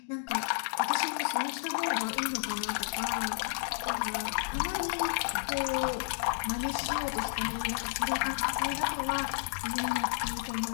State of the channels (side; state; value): right; silent; digital silence